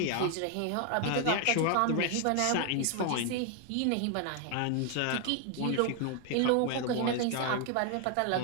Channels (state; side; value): different; both; correlation 0.00